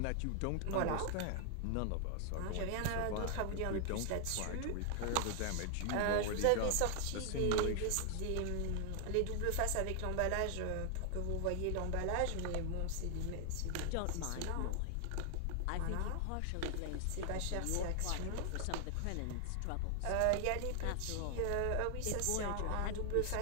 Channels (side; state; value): both; different; correlation 0.00